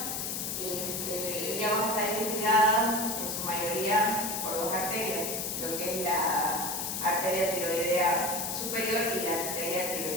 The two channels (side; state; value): left; noise; hiss, 3 dB below the sound